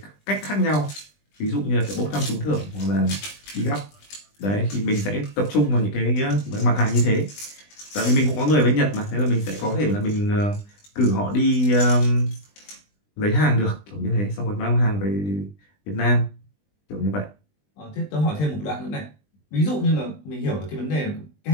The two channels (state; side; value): late; right; 20 ms